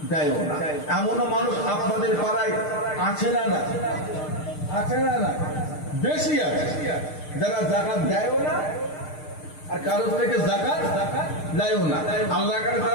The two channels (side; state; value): right; late; 6.6 ms